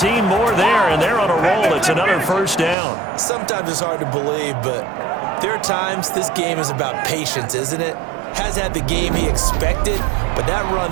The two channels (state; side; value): drops out; left; at 2.8 s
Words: more there, and they're on a roll. It's another first down. Sometimes it's hard to believe, but there are times this game is about patience, isn't it? Has had the game he expected, but that